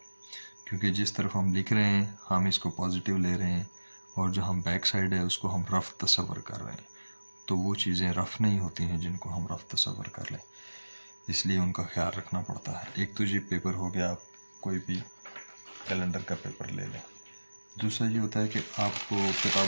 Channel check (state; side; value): inverted; both; correlation -1.00